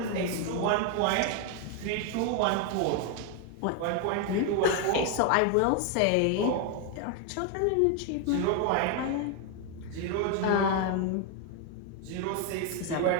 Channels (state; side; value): different; both; correlation 0.01